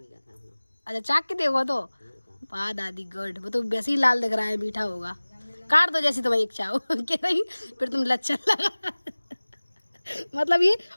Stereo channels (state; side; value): inverted; both; correlation -1.00